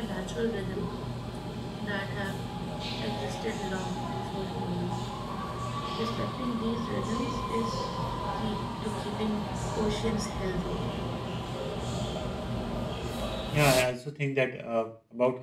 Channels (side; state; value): both; identical; correlation 1.00